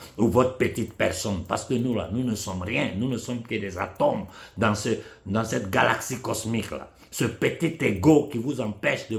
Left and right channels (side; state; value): both; identical; correlation 1.00